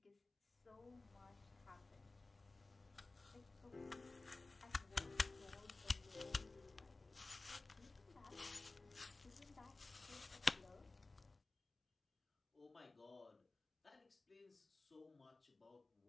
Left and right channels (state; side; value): quieter; right; 3.3 dB